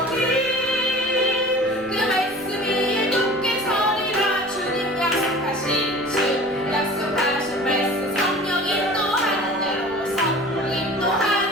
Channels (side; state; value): left; noise; rumble, 28 dB below the sound